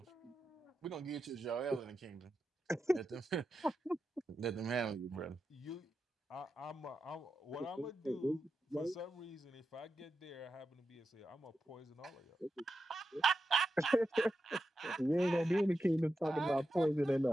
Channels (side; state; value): both; normal; correlation 0.89